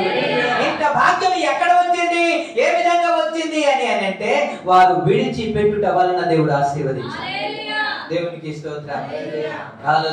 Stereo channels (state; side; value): identical; both; correlation 1.00